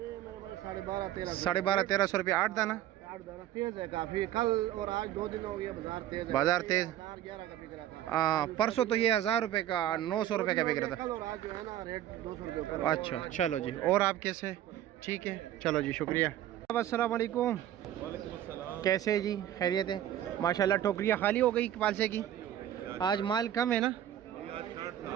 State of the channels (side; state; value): left; quieter; 12.0 dB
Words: मेरे पास 12.5-1300। 1250-1300 रुपये 8 दाना? 8 दाना तेज है काफी। कल और आज 2 दिन हो गया बाजार तेज है। बाजार तेज? 11 का बिक रहा था। परसों तो ये 1000 रुपये का 900 रुपये का बिक रहा था। कल और आज जो है ना रेट 200 रुपये ऊपर। अच्छा चलो जी। और आप कैसे? ठीक है चलो जी शुक्रिया। अस्सलाम वालेकुम। कैसे जी? खैरियत है? माशाल्लाह टोकरियाँ खाली हो गई पालसे की। आज माल कम है ना